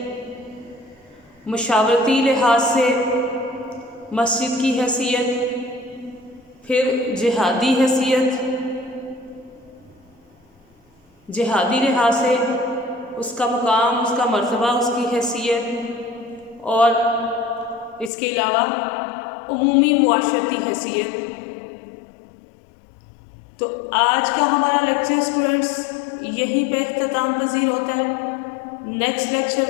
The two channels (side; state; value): right; drops out; at 18.1 s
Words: مشاورتی لحاظ سے مسجد کی حیثیت، پھر جہادی حیثیت، جہادی لحاظ سے اس کا مقام، اس کا مرتبہ، اس کی حیثیت، اور اس کے علاوہ عمومی معاشرتی حیثیت۔ تو آج کا ہمارا لیکچر اسٹوڈنٹس یہیں پہ اختتام پذیر ہوتا ہے۔ نیکسٹ